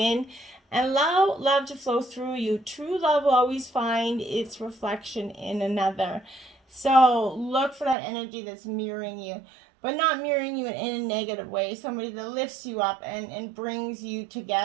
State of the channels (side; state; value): left; drops out; at 8.0 s